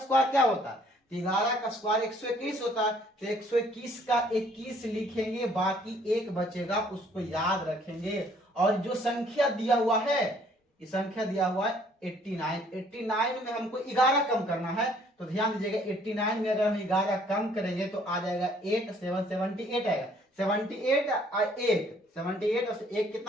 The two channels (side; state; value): both; normal; correlation 0.61